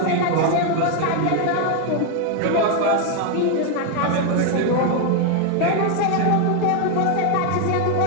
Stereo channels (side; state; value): both; different; correlation 0.01